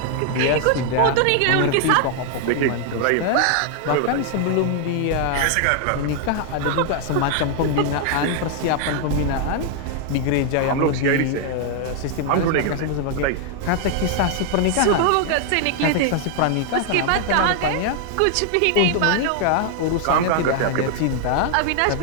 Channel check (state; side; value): different; both; correlation 0.00